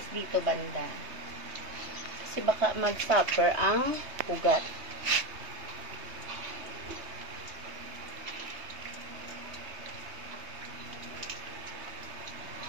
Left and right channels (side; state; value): left; late; 3.2 ms